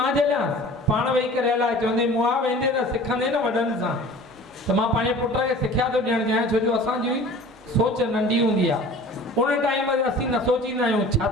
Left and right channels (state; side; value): normal; both; correlation 0.43